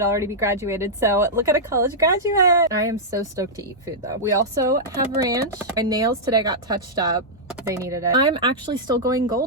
I'll already be graduated. So look at a college graduate. I am so stoked to eat food though. We also have ranch. My nails today got touched up. They needed it. I'm actually still going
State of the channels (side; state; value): both; normal; correlation -0.09